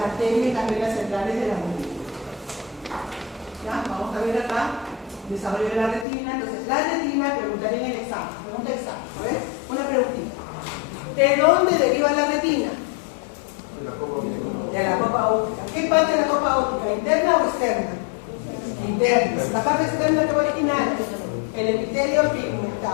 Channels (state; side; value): drops out; right; at 6.1 s